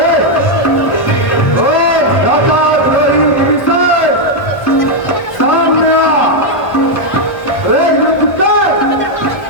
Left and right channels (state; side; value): late; right; 1.2 ms